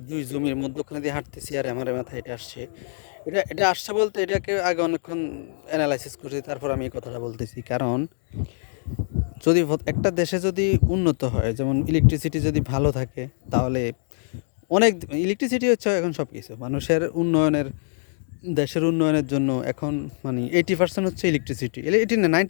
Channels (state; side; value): silent; right; digital silence